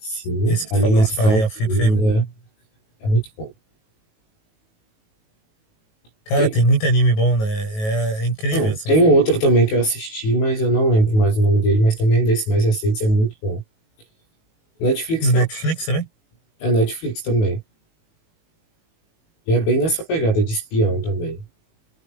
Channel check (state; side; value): late; right; 19 ms